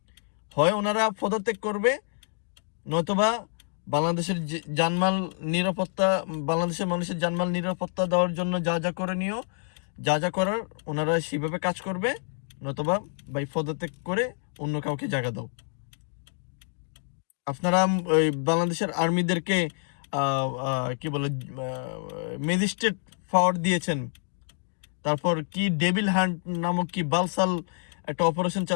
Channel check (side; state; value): right; silent; digital silence